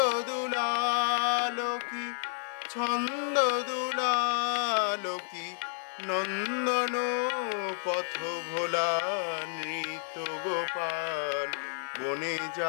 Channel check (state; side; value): silent; right; 57 dB below the other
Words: দুলাল কি ছন্দ দুলাল কি নন্দন পথ ভোলা নৃত্য গোপাল বনে